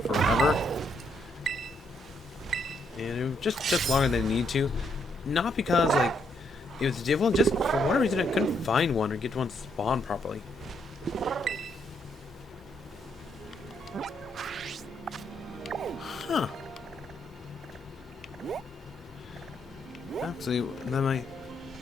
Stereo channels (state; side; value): normal; both; correlation 0.74